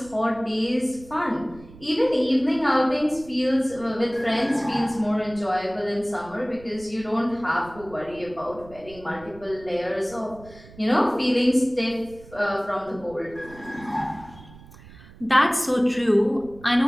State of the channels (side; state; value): right; noise; rumble, 20 dB below the sound